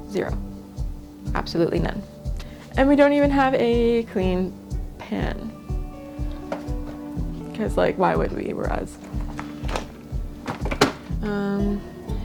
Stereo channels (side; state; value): both; identical; correlation 1.00